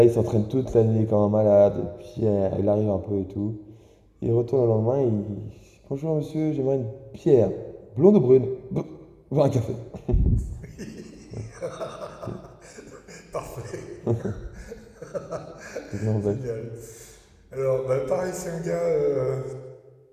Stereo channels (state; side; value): identical; both; correlation 1.00